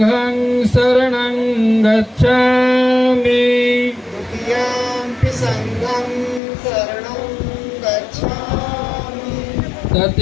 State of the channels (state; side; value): drops out; right; at 6.4 s